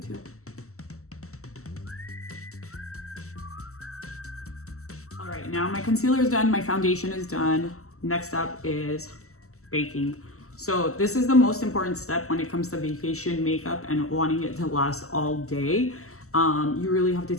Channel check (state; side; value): late; right; 0.64 ms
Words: All right, now my concealer is done, my foundation is done. Next up is baking. So this is the most important step when it comes to vacation makeup and wanting it to last all day. You really have to